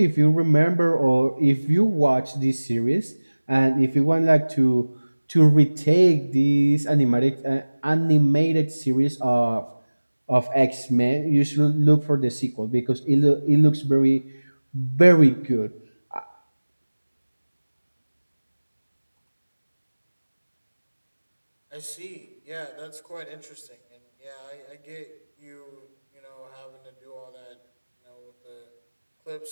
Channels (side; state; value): both; inverted; correlation -1.00